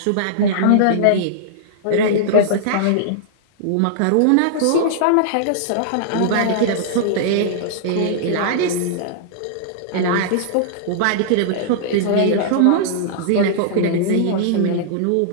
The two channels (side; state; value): both; different; correlation -0.02